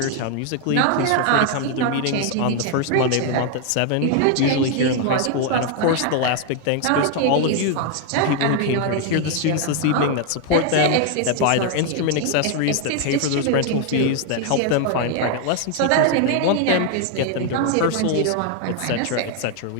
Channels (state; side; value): different; both; correlation 0.00